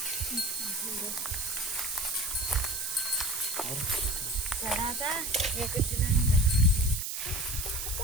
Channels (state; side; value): noise; right; hiss, 3 dB below the sound